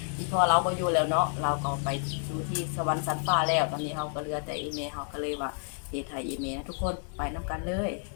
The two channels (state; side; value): silent; right; 58 dB below the other